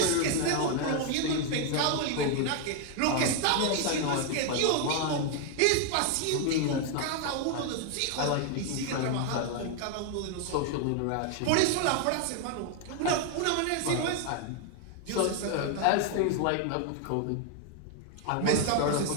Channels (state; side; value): different; both; correlation 0.01